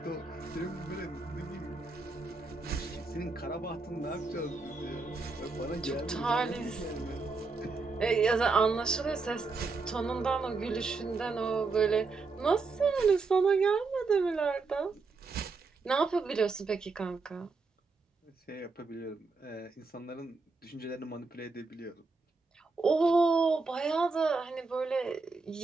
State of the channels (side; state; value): left; quieter; 4.1 dB